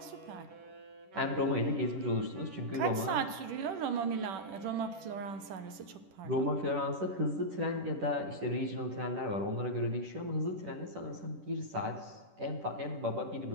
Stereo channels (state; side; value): late; left; 10 ms